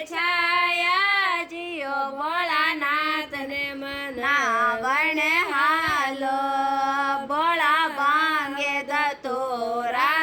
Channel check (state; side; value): identical; both; correlation 1.00